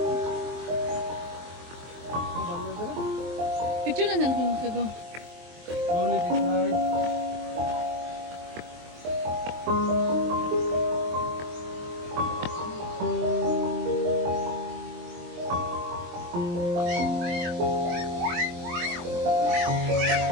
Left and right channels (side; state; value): left; late; 23 ms